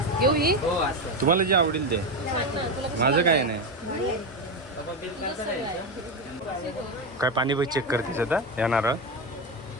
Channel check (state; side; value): normal; both; correlation 0.14